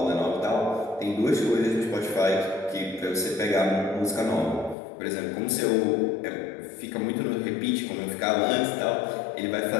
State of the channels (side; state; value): right; drops out; at 4.8 s